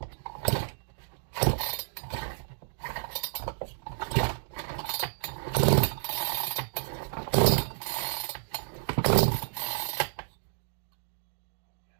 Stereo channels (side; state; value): left; silent; digital silence